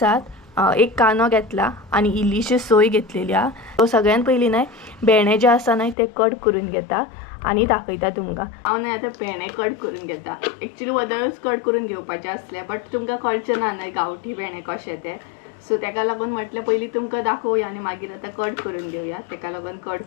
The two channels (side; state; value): right; drops out; at 6.0 s